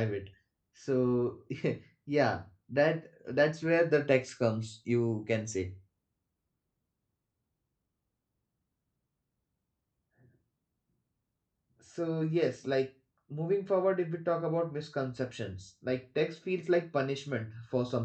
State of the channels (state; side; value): identical; both; correlation 1.00